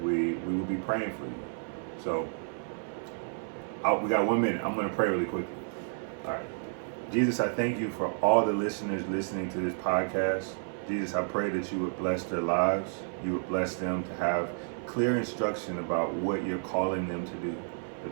will be praying for you. So we got 1 minute. I'm going to pray really quickly. All right. Jesus, I thank you for all the listeners listening to this podcast. Jesus, I pray that you would bless their lives. You would bless them to have clear instruction about what you're calling them to do, the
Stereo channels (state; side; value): silent; left; 57 dB below the other